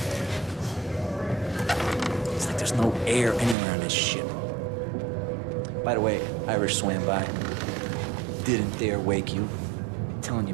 It's like there's no air anywhere on this ship. By the way, Irish swam by. Didn't dare wake you. I'm telling you,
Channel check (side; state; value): left; drops out; at 3.6 s